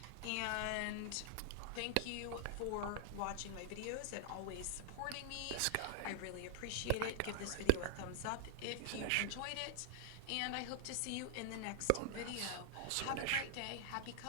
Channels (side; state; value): both; different; correlation 0.00